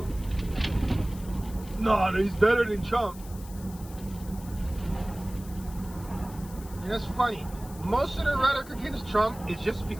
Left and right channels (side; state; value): left; noise; hiss, 19 dB below the sound